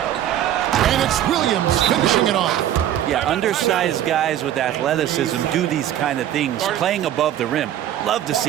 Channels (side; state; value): left; quieter; 11.5 dB